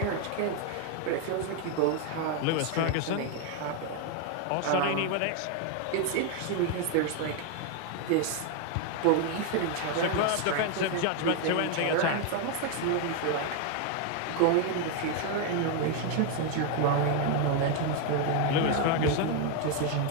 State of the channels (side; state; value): both; different; correlation 0.01